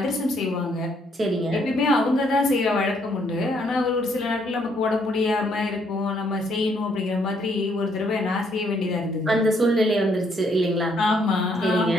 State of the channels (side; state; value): both; normal; correlation 0.70